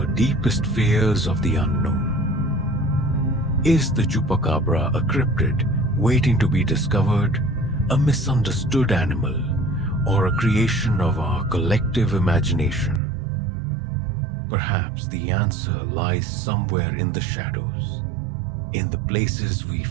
deepest fears of the unknown. Is the chupacabra a cryptid waiting to be discovered, a misunderstood animal, or a creation of our collective imagination? Perhaps the answer lies somewhere in the shadows, in the places we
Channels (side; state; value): left; drops out; at 13.0 s